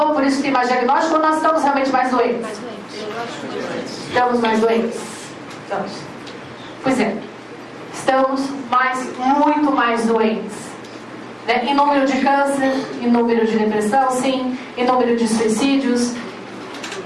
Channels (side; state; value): both; identical; correlation 1.00